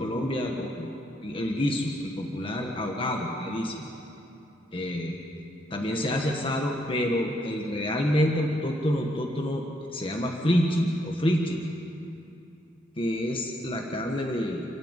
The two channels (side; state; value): both; normal; correlation 0.74